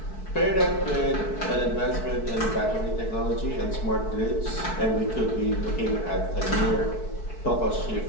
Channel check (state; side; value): late; right; 4.6 ms